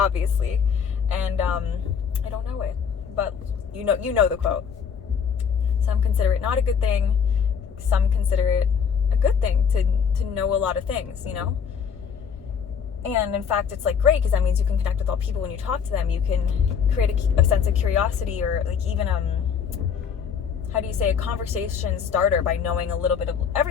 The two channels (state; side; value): quieter; right; 6.9 dB